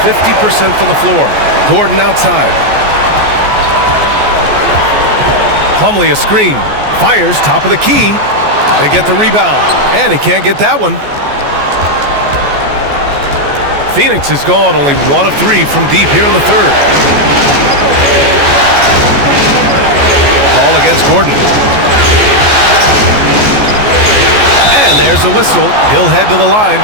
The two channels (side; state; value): left; late; 14 ms